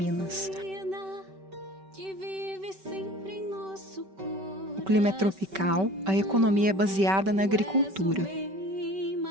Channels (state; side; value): late; left; 5.2 ms